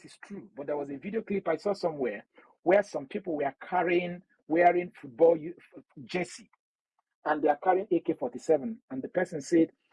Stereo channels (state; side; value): identical; both; correlation 1.00